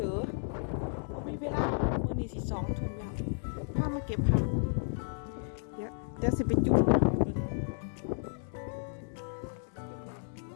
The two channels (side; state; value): right; silent; 56 dB below the other